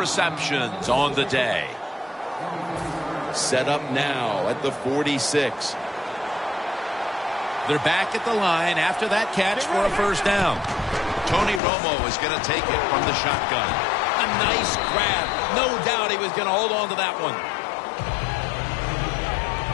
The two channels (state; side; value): drops out; right; at 11.6 s